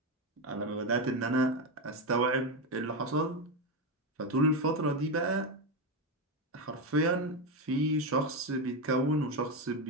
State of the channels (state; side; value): normal; both; correlation 0.10